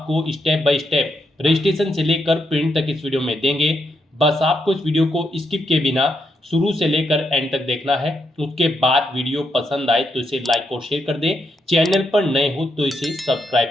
स्टेप बाय स्टेप रजिस्ट्रेशन से लेकर प्रिंट तक इस वीडियो में देंगे। बस आपको इस वीडियो को स्किप के बिना शुरू से लेकर एंड तक देखना है। उसके बाद वीडियो पसंद आए तो इसे लाइक और शेयर कर दें। चैनल पर नए हो तो इसे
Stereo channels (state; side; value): normal; both; correlation 0.80